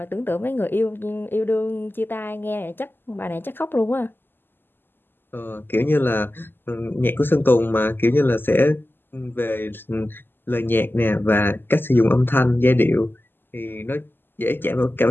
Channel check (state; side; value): late; right; 0.098 ms